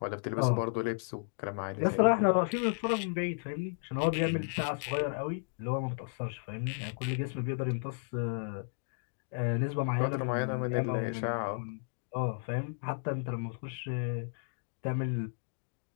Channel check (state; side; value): silent; right; digital silence